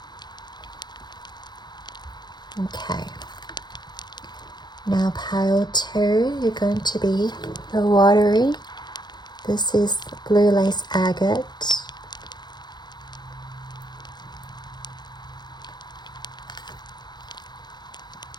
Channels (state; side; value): late; right; 0.21 ms